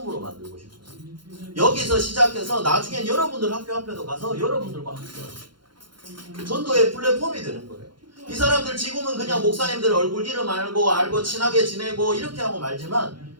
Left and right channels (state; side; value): late; left; 0.72 ms